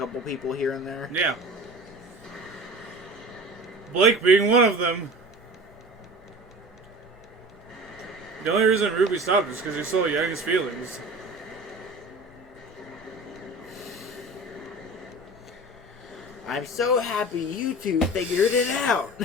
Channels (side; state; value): both; normal; correlation 0.37